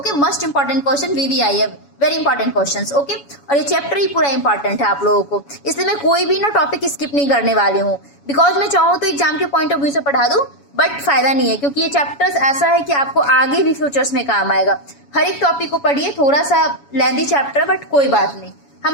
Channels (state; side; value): late; right; 7.1 ms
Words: must important question, VVI है, वेरी इंपॉर्टेंट क्वेश्चंस। ओके, और ये चैप्टर ही पूरा इंपॉर्टेंट है आप लोगों को, इसलिए मैं कोई भी ना टॉपिक स्किप नहीं करने वाली हूँ। बिकॉज मैं चाहूँ तो एग्जाम के पॉइंट ऑफ व्यू से पढ़ा दूँ, बट फायदा नहीं है, क्योंकि ये चैप्टर्स ऐसा है कि आपको आगे भी फ्यूचर्स में काम आएगा। हर एक टॉपिक को पढ़िए, थोड़ा सा लेंथी चैप्टर बट कोई बात नहीं,